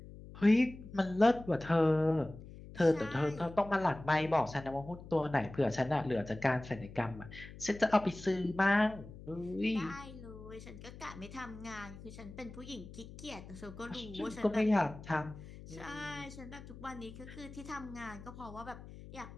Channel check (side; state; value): left; noise; hum, 15 dB below the sound